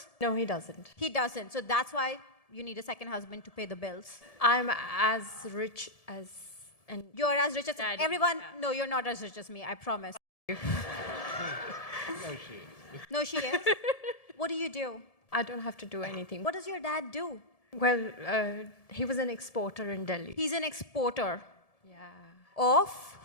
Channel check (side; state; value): right; late; 1.7 ms